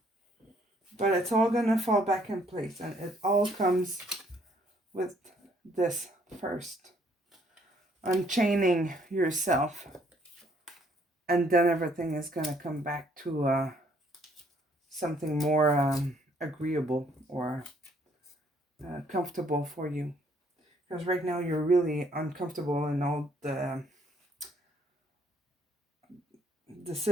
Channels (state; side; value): normal; both; correlation 0.66